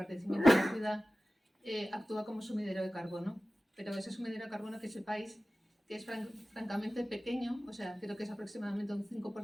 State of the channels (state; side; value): normal; both; correlation 0.96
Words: de la ciudad, actúa como sumidero de carbono, pero ese sumidero de carbono, que sepáis que es francamente pequeño, o sea, creo que es aproximadamente un